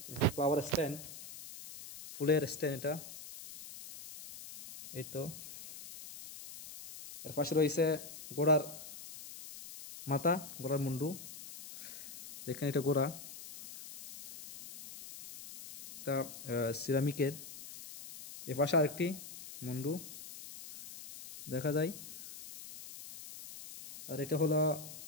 ফ্লাওয়ার স্ট্যান্ড, ফুলের স্ট্যান্ড, এটা এই তো। এর পাশে রয়েছে গোড়ার মাথা, গোড়ার মুন্ডু, দেখেন এটা গোড়া, তা সিরামিকের। এ পাশে আরেকটি মুন্ডু দেখা যায়, আর এটা হলো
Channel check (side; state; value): left; noise; hiss, 13 dB below the sound